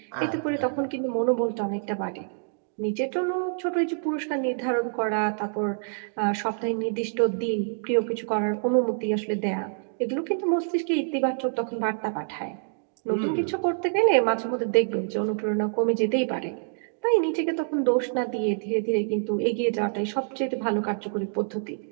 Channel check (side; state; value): left; silent; digital silence